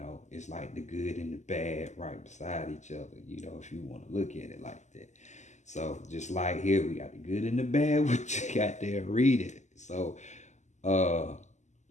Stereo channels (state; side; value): late; right; 0.34 ms